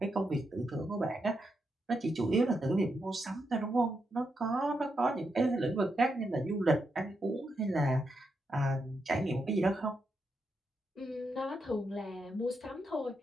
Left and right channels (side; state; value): both; normal; correlation 0.83